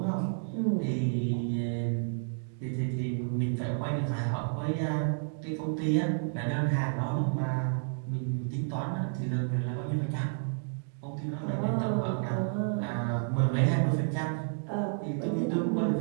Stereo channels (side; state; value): left; silent; digital silence